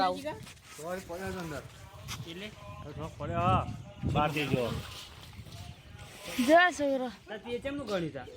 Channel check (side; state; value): both; identical; correlation 1.00